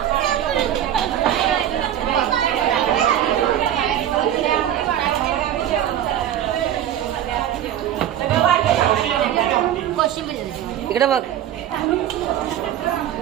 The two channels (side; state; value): left; quieter; 11.0 dB